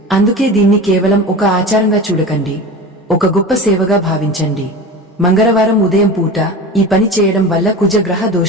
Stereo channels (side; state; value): both; normal; correlation 0.32